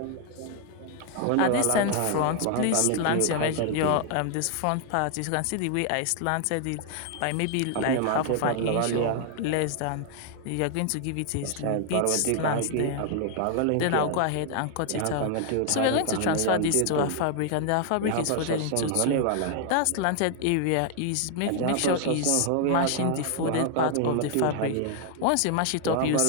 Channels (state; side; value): different; both; correlation 0.00